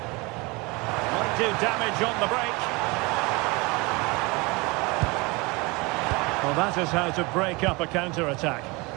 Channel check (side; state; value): left; quieter; 25.8 dB